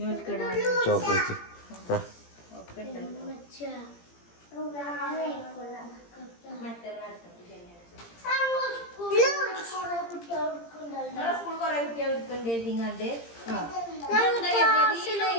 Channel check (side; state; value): right; late; 17 ms